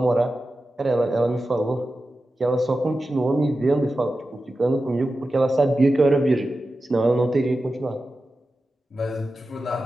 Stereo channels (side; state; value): both; normal; correlation 0.92